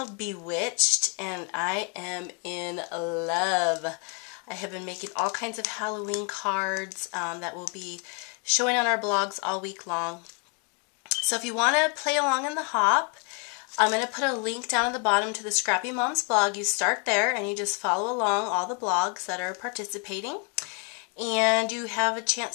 Bewitched, and I am in love. I have been making all kinds of Halloween cards that will be showing on our blogs all week long. So if you want to play along in the hop, I'm going to put a link down at the bottom to the Scrappy Mom's blog. You start there and you just follow along all the blogs that are participating. And you have a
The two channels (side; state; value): right; quieter; 36.0 dB